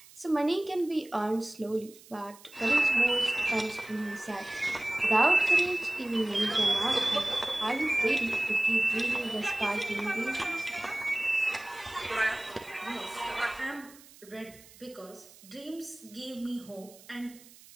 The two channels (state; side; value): noise; right; hiss, 22 dB below the sound